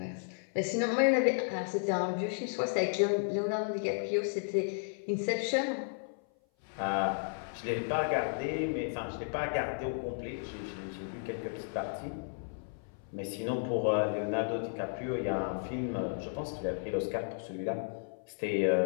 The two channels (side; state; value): right; silent; 55 dB below the other